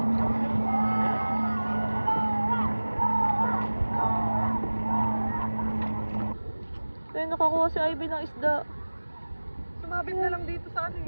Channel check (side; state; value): both; inverted; correlation -1.00